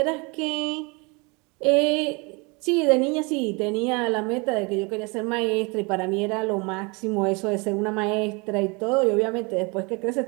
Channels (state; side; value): quieter; left; 29.3 dB